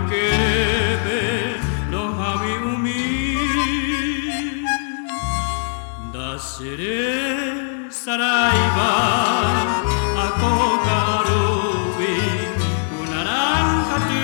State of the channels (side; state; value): right; silent; digital silence